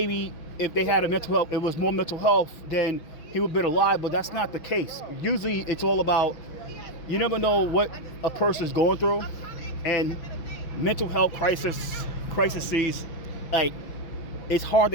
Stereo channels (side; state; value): right; late; 6.0 ms